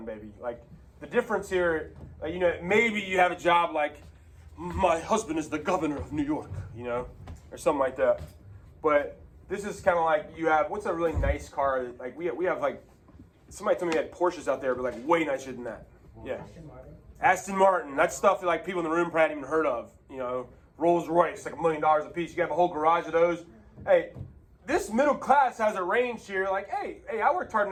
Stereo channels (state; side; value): identical; both; correlation 1.00